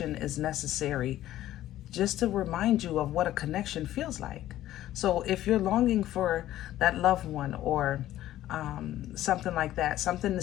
is necessary just to remind you of what a connection feels like. So if you're longing for that loved one, or something like that, something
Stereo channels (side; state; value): right; quieter; 13.7 dB